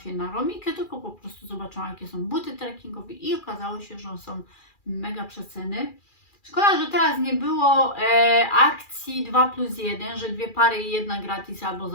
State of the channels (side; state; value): right; late; 2.4 ms